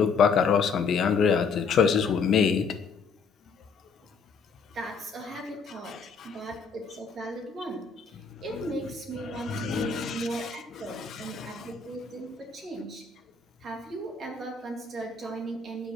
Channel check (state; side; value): quieter; right; 5.2 dB